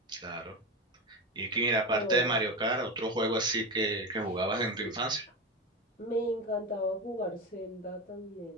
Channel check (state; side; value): normal; both; correlation 0.20